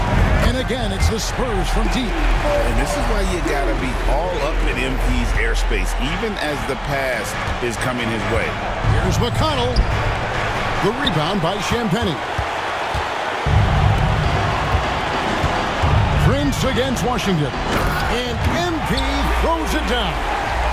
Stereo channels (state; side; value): identical; both; correlation 1.00